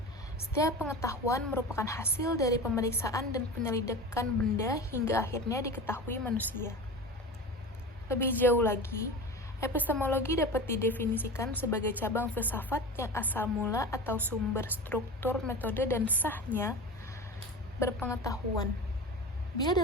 setiap pengetahuan merupakan hasil dari pemeriksaan dan penyelidikan benda hingga akhirnya diketahui manusia. Lebih jauh lagi, epistemologi dapat didefinisikan sebagai cabang filsafat yang asal mula atau sumber struktur, metode, dan sahnya berpengetahuan. Bila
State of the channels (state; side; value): normal; both; correlation 0.31